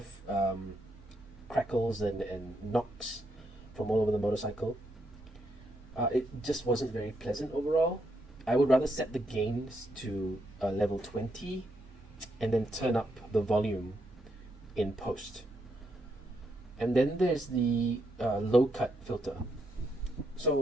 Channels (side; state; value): both; normal; correlation 0.79